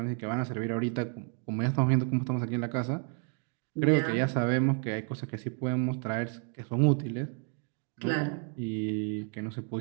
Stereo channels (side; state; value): left; quieter; 38.8 dB